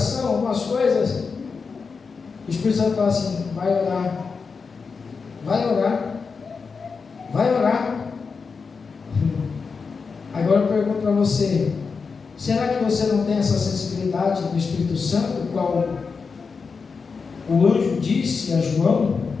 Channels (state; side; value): quieter; right; 5.1 dB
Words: algumas coisas. O Espírito Santo fala assim: vai orar, vai orar, vai orar. Agora eu pergunto para você: será que você não tem essa sensibilidade do Espírito Santo, qual o anjo disse a João?